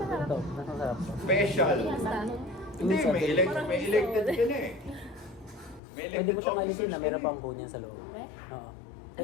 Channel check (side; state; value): right; drops out; at 5.8 s